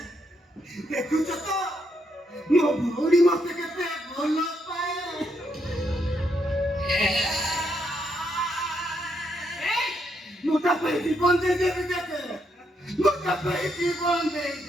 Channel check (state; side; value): normal; both; correlation 0.77